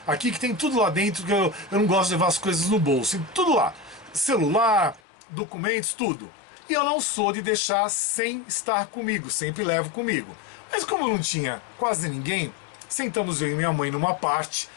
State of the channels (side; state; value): right; drops out; at 5.0 s